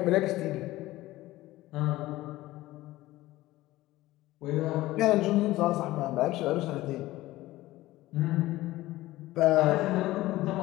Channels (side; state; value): right; quieter; 17.2 dB